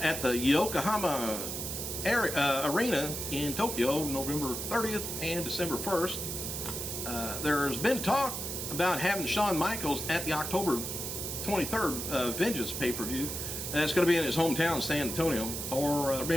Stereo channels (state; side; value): noise; right; hiss, 5 dB below the sound